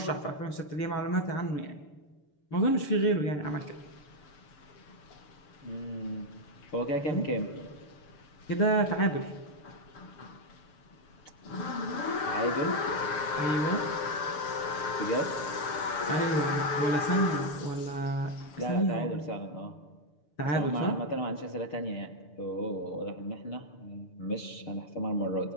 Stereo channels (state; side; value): late; right; 6.8 ms